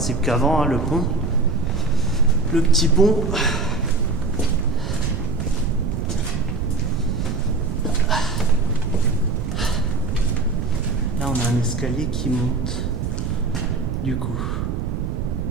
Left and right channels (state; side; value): noise; right; rumble, 2 dB below the sound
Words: qu'avant, hein, le pont. Le petit pont. Là, on a un escalier qui monte. Du coup,